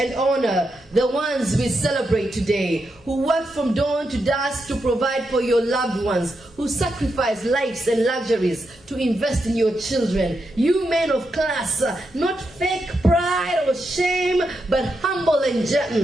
honor, the ones we celebrate today, who work from dawn to dusk to provide for your loved ones, who sacrifice lives and luxuries to invest in your children. You men of class, not fake pride or shame, but humble and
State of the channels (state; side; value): normal; both; correlation 0.84